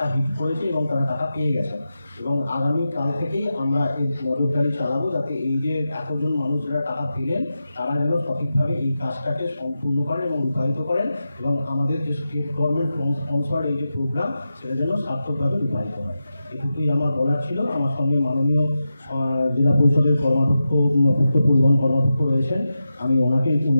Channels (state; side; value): inverted; both; correlation -0.91